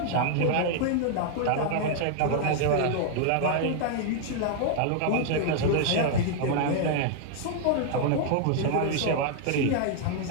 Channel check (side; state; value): both; different; correlation 0.00